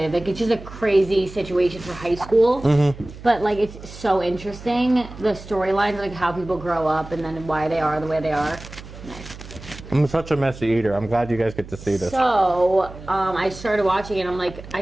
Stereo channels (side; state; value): right; noise; hum, 15 dB below the sound